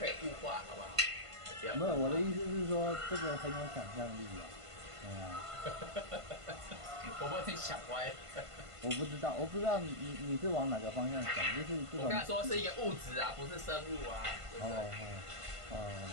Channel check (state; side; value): late; left; 1.5 ms